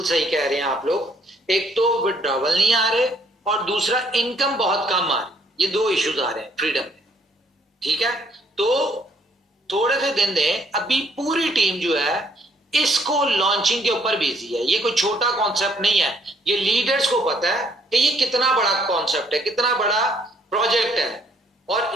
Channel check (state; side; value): normal; both; correlation 0.66